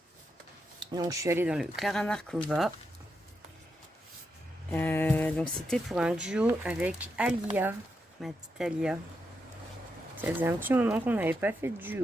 Donc, je suis allée dans le Clara Markova. Donc, c'était pour un duo avec Alia, ma petite Alia. Ça faisait un petit moment qu'on n'avait pas fait de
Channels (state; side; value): normal; both; correlation 0.84